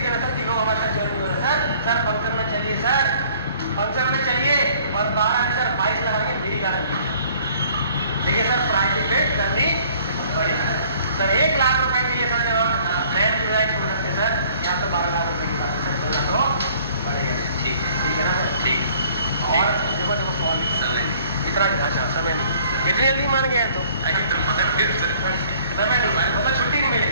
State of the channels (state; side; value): inverted; both; correlation -0.57